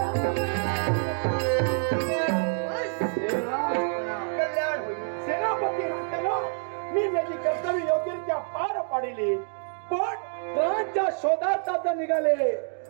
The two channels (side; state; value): left; silent; 60 dB below the other